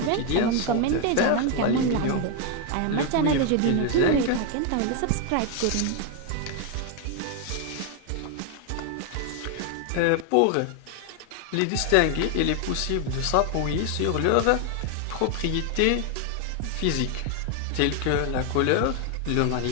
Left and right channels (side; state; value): both; different; correlation 0.01